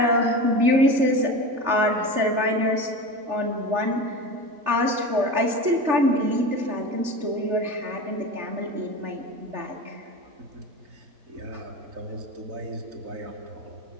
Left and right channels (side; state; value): left; late; 3.4 ms